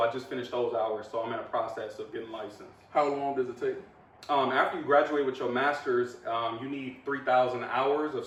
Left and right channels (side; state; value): both; identical; correlation 1.00